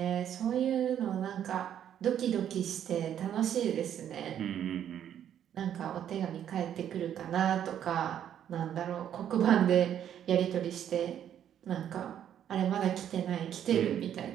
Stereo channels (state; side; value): quieter; left; 9.9 dB